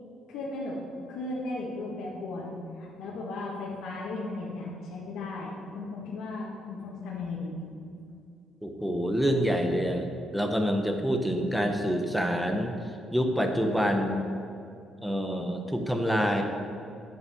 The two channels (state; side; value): normal; both; correlation 0.83